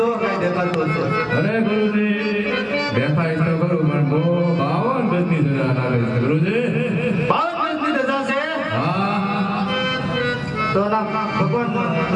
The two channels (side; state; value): both; identical; correlation 1.00